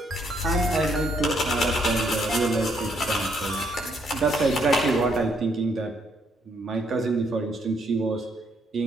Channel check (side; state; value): both; normal; correlation 0.71